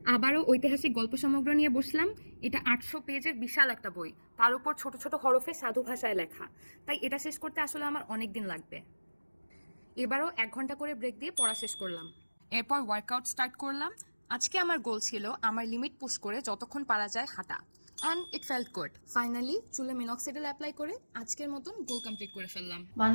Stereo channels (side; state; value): both; inverted; correlation -1.00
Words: আবারও ঐতিহাসিক গল্প সমগ্র নিয়ে বসলাম। এটা 800 পেজের বিশাল একটা বই, তার উপর ছোট ছোট হরফে সাধু ভাষায় লেখা, তাই এটা শেষ করতে আসলে আমার অনেক দিন লাগবে। এবারও 1 ঘন্টা করে ব্রেক দিয়ে পড়া শেষ করলাম। এরপর ওয়ার্কআউট স্টার্ট করলাম। আজকে আমার গোল ছিল আমার লিমিট পুশ করে যতক্ষণ পারা যায় হাঁটা, and it felt good. Finally চুলে মিনক্সিডিল অ্যাপ্লাই করে আজকের মতন গোল কমপ্লিট করে ফেললাম।